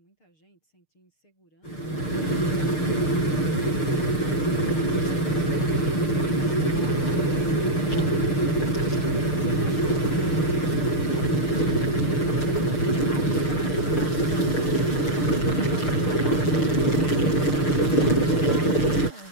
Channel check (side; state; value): right; late; 6.6 ms